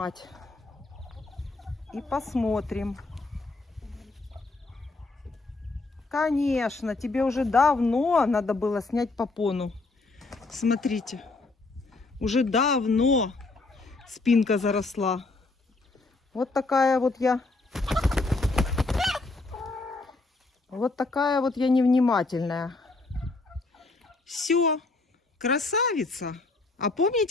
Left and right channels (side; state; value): right; quieter; 3.4 dB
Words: И посмотрим. Конечно, тебе уже давно надо было снять попону. Смотрите. Уже давно спинка заросла. Вот такая вот я. Вот такая вот я невнимательная. Все, красавица. А